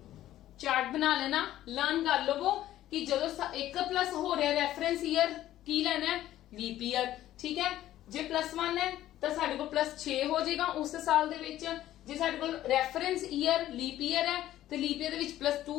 ਚਾਰਟ ਬਣਾ ਲੈਣਾ, ਲਰਨ ਕਰ ਲਵੋ ਕਿ ਜਦੋਂ 1+ ਹੋ ਰਿਹਾ ਰੈਫਰੈਂਸ ਈਅਰ ਕੀ ਲੈਣਾ ਹੈ? ਲੀਪ ਈਅਰ, ਠੀਕ ਹੈ। ਜੇ +1 ਹੈ ਤਾਂ ਸਾਡੇ ਕੋਲ +6 ਹੋ ਜਾਏਗਾ ਉਸ ਸਾਲ ਦੇ ਵਿੱਚ। ਜੇ ਸਾਡੇ ਕੋਲ ਰੈਫਰੈਂਸ ਈਅਰ ਲੀਪ ਈਅਰ ਹੈ ਤੇ ਲੀਪ ਈਅਰ ਦੇ ਵਿੱਚ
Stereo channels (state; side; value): quieter; right; 13.5 dB